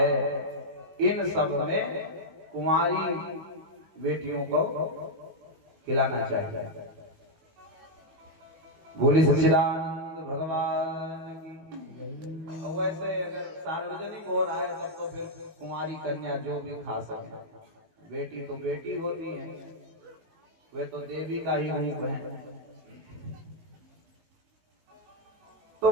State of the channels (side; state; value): left; late; 19 ms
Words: इन सब में कुंवारी बेटियों को खिलाना चाहिए। बोली सच्चिदानंद भगवान की। और वैसे अगर सार्वजनिक हो रहा है तब तो फिर कुंवारी कन्या जो भी खा सके। बेटी तो बेटी होती है, वे तो देवी का ही रूप है। तो